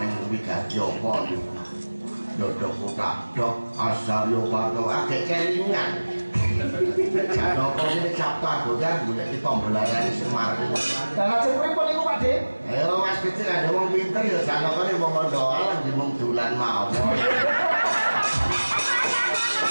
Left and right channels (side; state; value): both; inverted; correlation -1.00